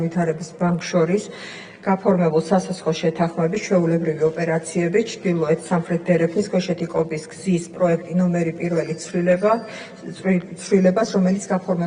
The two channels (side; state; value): both; identical; correlation 1.00